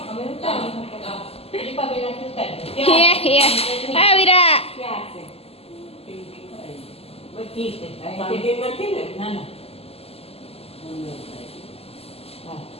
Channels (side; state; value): right; late; 0.29 ms